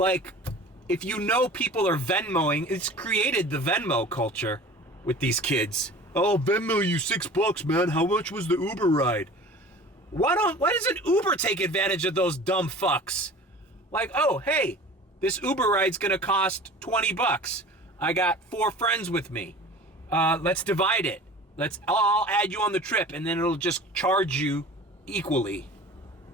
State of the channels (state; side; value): normal; both; correlation 0.41